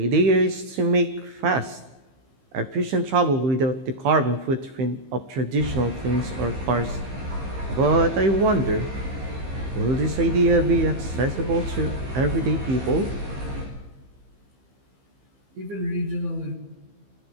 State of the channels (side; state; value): left; late; 15 ms